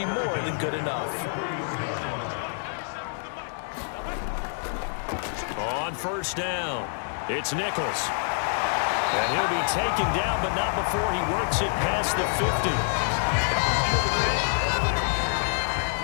more than good enough. On first down, it's Nichols. And he'll be taken down, but not before he works it past the 50.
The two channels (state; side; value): silent; right; digital silence